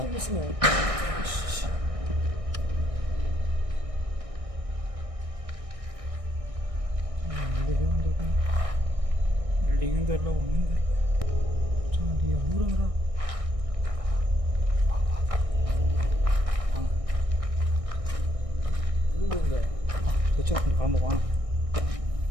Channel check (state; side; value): late; left; 1.6 ms